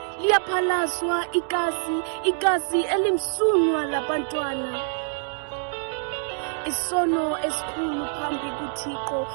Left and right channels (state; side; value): silent; left; 61 dB below the other